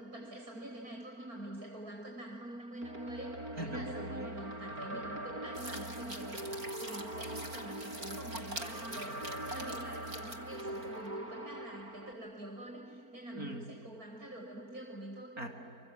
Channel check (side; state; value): left; late; 4.4 ms